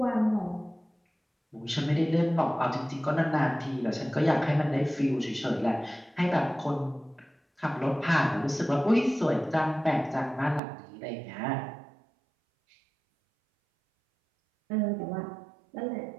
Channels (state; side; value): drops out; left; at 10.6 s